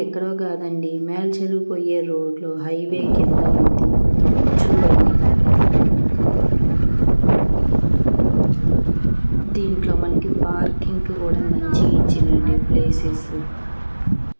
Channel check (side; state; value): both; inverted; correlation -1.00